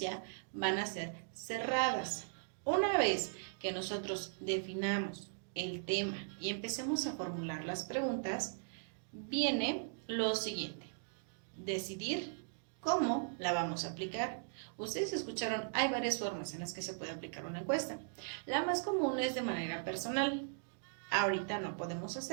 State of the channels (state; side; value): silent; left; digital silence